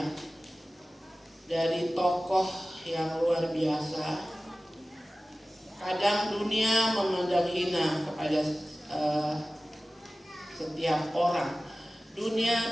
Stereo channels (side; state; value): both; normal; correlation 0.96